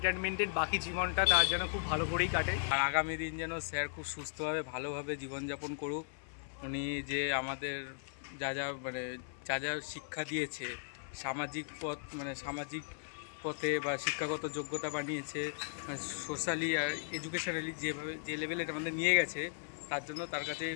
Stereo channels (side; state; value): right; silent; 53 dB below the other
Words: বাকি জীবনটা তার যেন খুব ভালো করেই কাটে, আর আগামী দিন যেন স্যার খুব সুস্থভাবে ভালোভাবে জীবনযাপন করুক। উনি যে আমাদের যা যা শিক্ষা দিয়েছে, সামাজিক পথে বা শিক্ষাগত যোগ্যতা বানিয়েছে, সোশ্যালি আর এডুকেশনালি যে লেভেলে আমাদের নিয়ে গেছে, তার জন্য তার কাছে